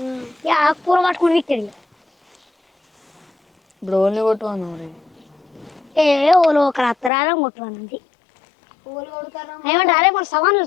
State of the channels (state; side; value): drops out; right; at 7.1 s